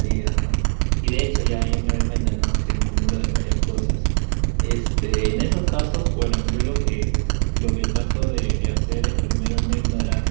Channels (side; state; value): left; silent; digital silence